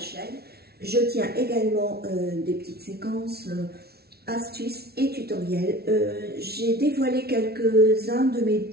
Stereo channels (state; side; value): late; left; 0.45 ms